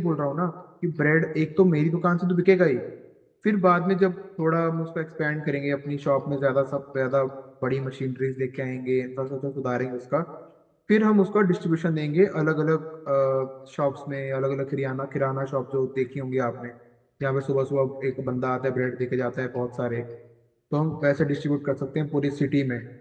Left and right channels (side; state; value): both; identical; correlation 1.00